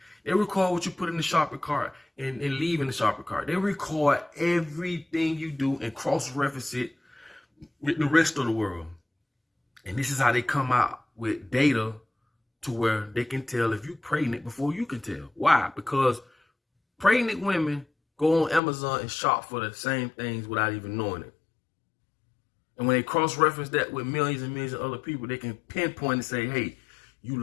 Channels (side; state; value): right; drops out; at 18.6 s